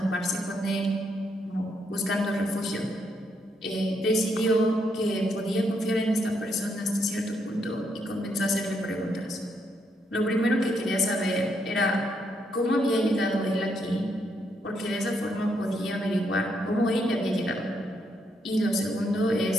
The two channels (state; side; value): normal; both; correlation 0.76